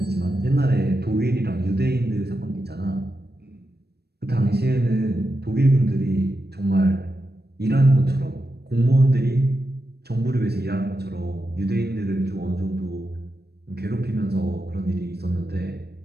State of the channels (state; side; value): late; left; 0.47 ms